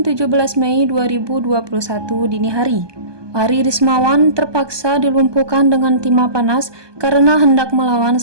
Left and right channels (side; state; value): left; late; 1.2 ms